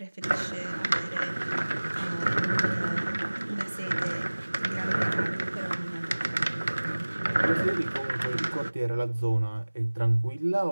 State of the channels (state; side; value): inverted; both; correlation -1.00